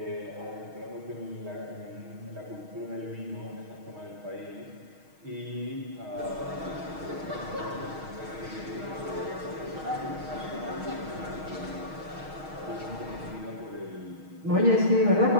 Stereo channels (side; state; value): left; late; 6.4 ms